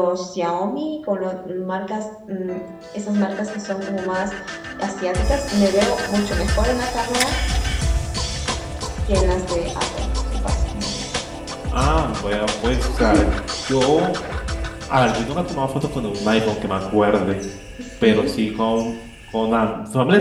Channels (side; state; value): both; identical; correlation 1.00